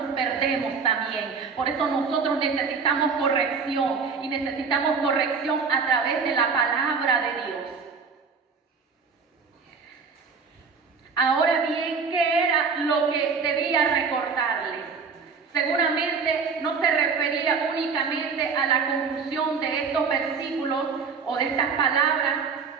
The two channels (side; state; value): left; quieter; 5.4 dB